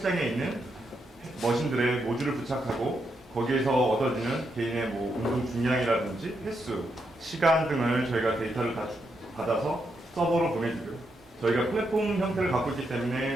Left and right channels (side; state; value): both; normal; correlation 0.81